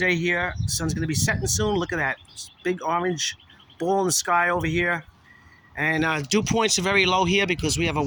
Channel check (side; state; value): both; identical; correlation 1.00